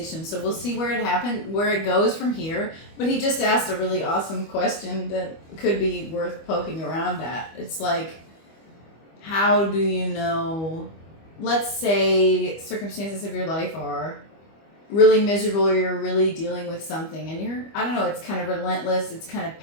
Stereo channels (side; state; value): right; late; 25 ms